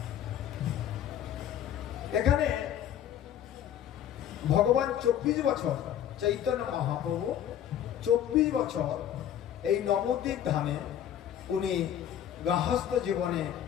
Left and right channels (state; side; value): quieter; right; 10.3 dB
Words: এখানে ভগবান 24 বছর, চৈতন্য মহাপ্রভু 24 বছর এই নবদ্বীপ ধামে উনি গৃহস্থ জীবনে